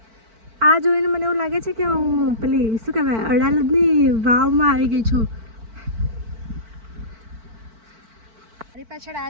આ જોઈને મને એવું લાગે છે કે હું પેલી શું કહેવાય અડાલજની વાવમાં આવી ગઈ છું. મારી પાછળ આ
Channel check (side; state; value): left; late; 4.5 ms